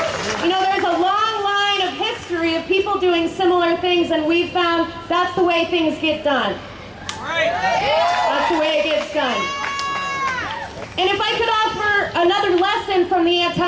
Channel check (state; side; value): identical; both; correlation 1.00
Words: You know, there's a long line of history of people doing similar things, and we've found that's the way things get done. That's the way it gets done. And if I could offer another lesson from the